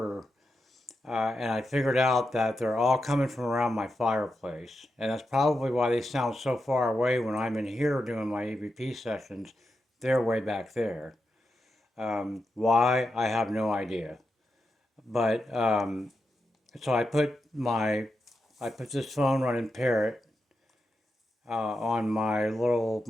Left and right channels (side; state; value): both; normal; correlation 0.87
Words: And I figured out that they're all coming from around my fireplace. And that's probably why they sound so far away when I'm in here doing my EVP sessions. They're way back there. Why? I have no idea. But so I put this phone running Parrot on